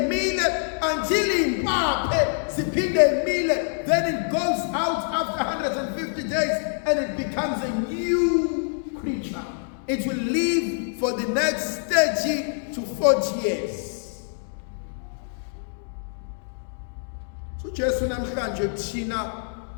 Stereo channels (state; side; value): silent; right; digital silence